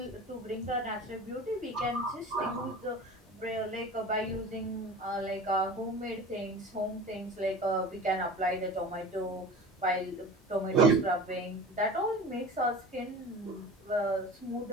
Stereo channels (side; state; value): both; normal; correlation 0.36